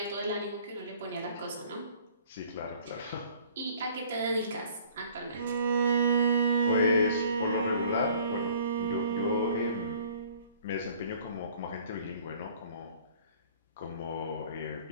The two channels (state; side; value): inverted; both; correlation -0.54